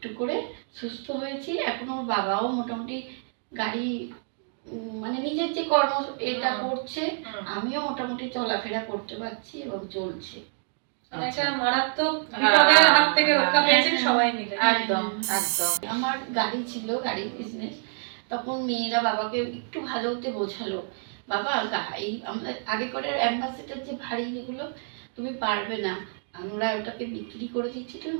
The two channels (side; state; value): left; silent; 56 dB below the other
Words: করে সুস্থ হয়েছি। এখন ওর বাবাও মোটামুটি গাড়ি, মানে নিজের যে কর্ম এটা করছে, আমিও মোটামুটি চলাফেরা করতে পারছি এবং চলছে। একটা মারাত্মক বিপদের হাত থেকে রক্ষা পেয়েছেন সবাই মিলে। একদম একদম। আমার গাড়ি ছিল, গাড়ির বিজনেস। তখন মেয়েরা বাবাকে একটু ভালো হতে বোঝালো, বাবা এই আমাদের আগে করে অ্যাম্বাসেডার যে ভারী যেগুলো তুমি পারবে না, আমরা ওটাকে বিক্রি করে দিচ্ছি, তুমি